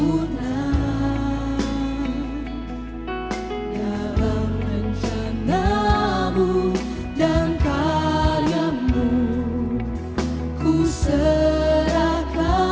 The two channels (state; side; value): identical; both; correlation 1.00